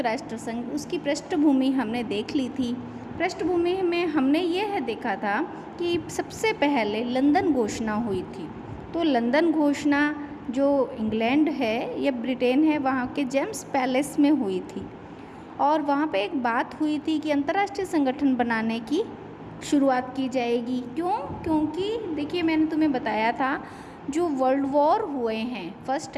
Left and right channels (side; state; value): both; identical; correlation 1.00